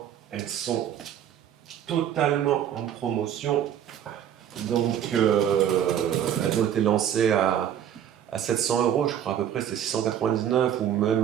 elles sont totalement en promotion. Donc elles ont été lancées à 700 €, je crois à peu près, c'était 699 ou même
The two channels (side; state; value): left; quieter; 10.0 dB